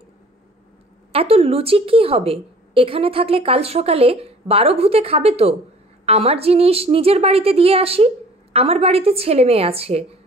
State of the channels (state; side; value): normal; both; correlation 0.50